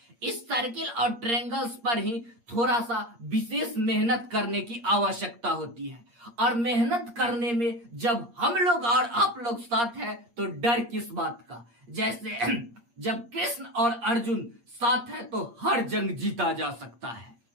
इस सर्किल और ट्रायंगल्स पर ही थोड़ा सा विशेष मेहनत करने की आवश्यकता होती है, और मेहनत करने में जब हम लोग और आप लोग साथ हैं तो डर किस बात का। जैसे जब कृष्ण और अर्जुन साथ है तो हर जंग जीता जा सकता है।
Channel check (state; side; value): late; left; 8.5 ms